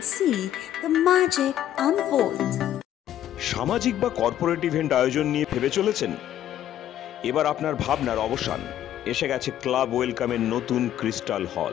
see the magic unfold. সামাজিক বা corporate event আয়োজন নিয়ে ভেবে চলেছেন? এবার আপনার ভাবনার অবসান। এসে গেছে ক্লাব ওয়েলকামের নতুন ক্রিস্টাল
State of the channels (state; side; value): quieter; right; 11.7 dB